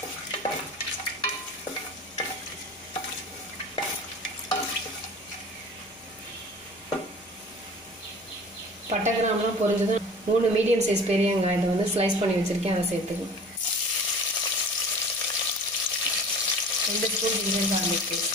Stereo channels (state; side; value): noise; left; hum, 30 dB below the sound